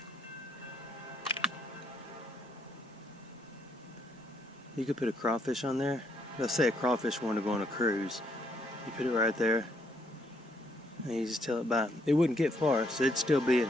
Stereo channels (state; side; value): normal; both; correlation 0.72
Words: You could put a crawfish on there. Let's say a crawfish wanted to go on a cruise. You put it right there. And you just tell it by. It wouldn't get far, so it'd still be